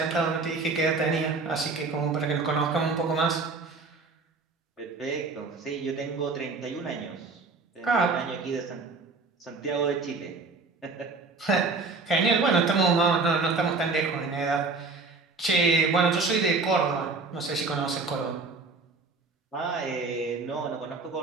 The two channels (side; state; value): left; quieter; 4.0 dB